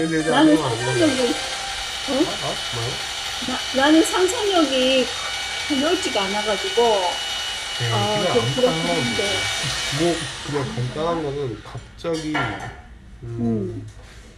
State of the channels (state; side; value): identical; both; correlation 1.00